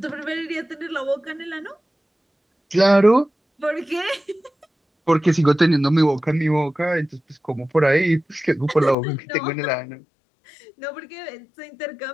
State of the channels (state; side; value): drops out; right; at 9.0 s